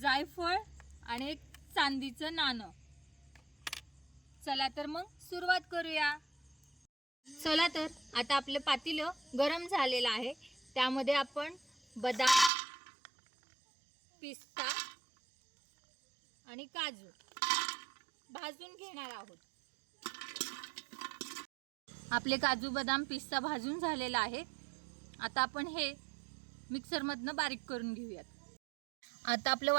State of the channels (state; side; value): drops out; left; at 12.5 s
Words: आणि एक चांदीचं नाणं। चला तर मग सुरुवात करूया। चला तर आता आपलं पातेलं गरम झालेलं आहे, त्यामध्ये आपण बदाम, पिस्ता आणि काजू भाजून घेणार आहोत। आपले काजू, बदाम, पिस्ता भाजून झालेला आहे। आता आपण हे मिक्सर मधनं बारीक करून घेऊयात। आता आपलं